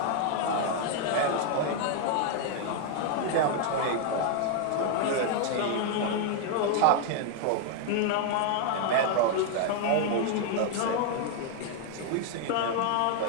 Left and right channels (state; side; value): different; both; correlation 0.00